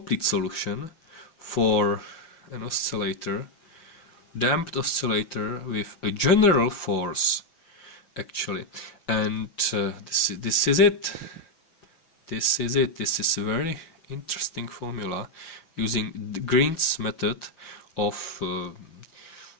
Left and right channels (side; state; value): right; late; 6.0 ms